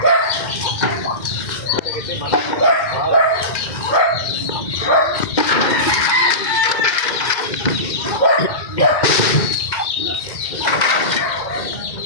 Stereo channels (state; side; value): late; right; 2.1 ms